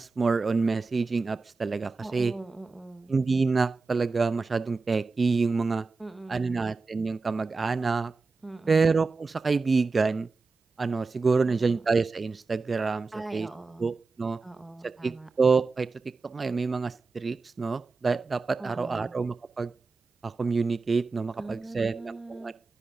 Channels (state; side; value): quieter; left; 4.1 dB